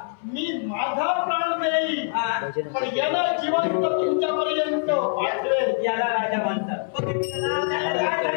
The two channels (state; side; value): silent; right; 61 dB below the other